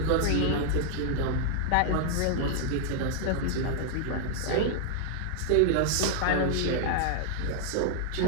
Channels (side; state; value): both; different; correlation -0.01